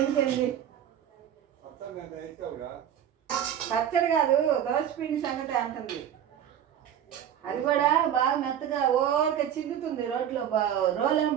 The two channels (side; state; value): left; quieter; 9.8 dB